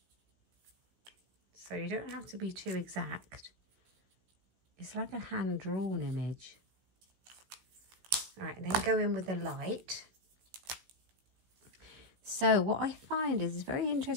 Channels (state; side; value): late; left; 16 ms